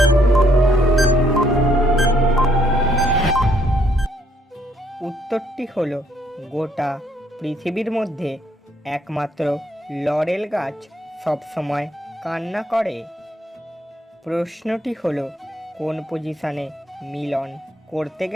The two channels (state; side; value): normal; both; correlation 0.70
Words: উত্তরটি হলো, গোটা পৃথিবীর মধ্যে একমাত্র লরেল গাছ সবসময় কান্না করে। প্রশ্নটি হলো, কোন পজিশনে মিলন করতে